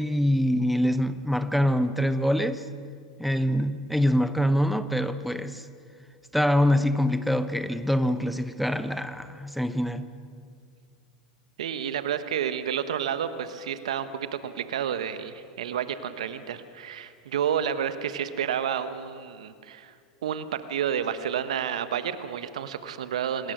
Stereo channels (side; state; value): both; normal; correlation 0.60